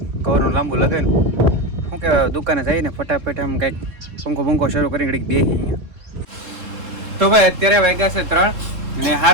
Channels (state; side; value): late; left; 3.8 ms